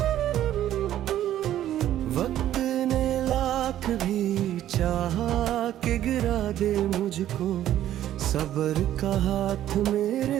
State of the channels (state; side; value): quieter; left; 12.2 dB